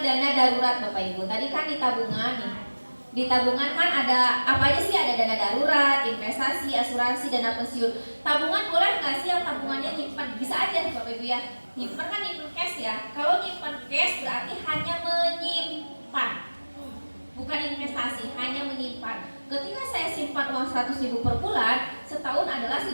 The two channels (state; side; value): inverted; both; correlation -1.00